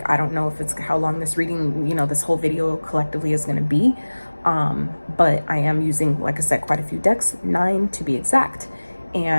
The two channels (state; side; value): inverted; both; correlation -1.00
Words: I don't know if it's how long this reading, you know, this whole video collectively is going to be. But I am using, like I said, quite a few decks, 9 to be exact.